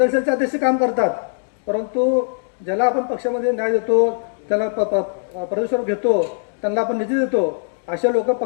सेलचे अध्यक्ष काम करतात, परंतु ज्याला आपण पक्षामध्ये न्याय देतो, त्याला प्रदेशवर घेतो, त्यांना आपण निधी देतो, अशा लोक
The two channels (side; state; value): right; silent; digital silence